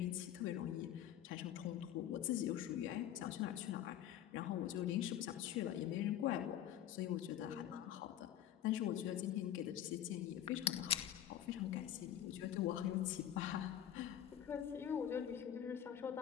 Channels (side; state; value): right; quieter; 10.9 dB